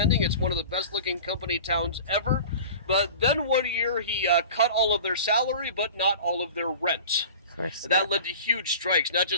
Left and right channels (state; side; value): inverted; both; correlation -0.39